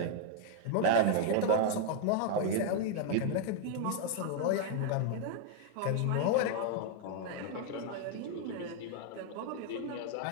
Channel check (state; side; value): different; both; correlation 0.00